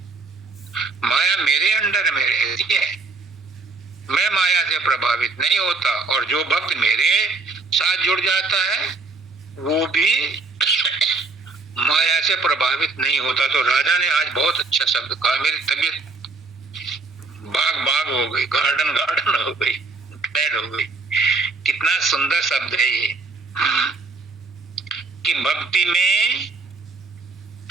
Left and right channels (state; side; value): quieter; left; 3.8 dB